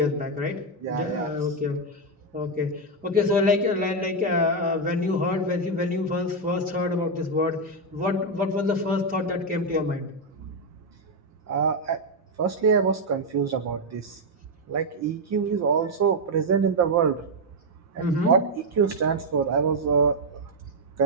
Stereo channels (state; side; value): normal; both; correlation 0.02